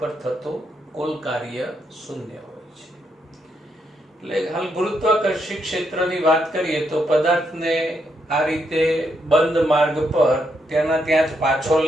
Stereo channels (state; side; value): normal; both; correlation 0.78